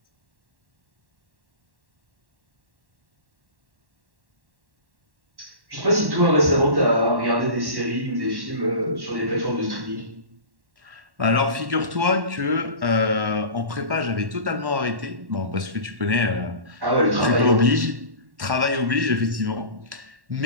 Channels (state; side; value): late; left; 1.1 ms